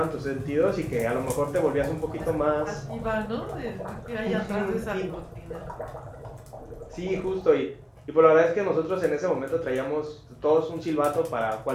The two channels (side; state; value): both; identical; correlation 1.00